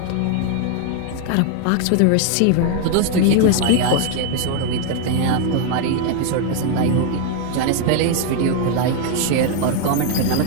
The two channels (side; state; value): both; different; correlation 0.00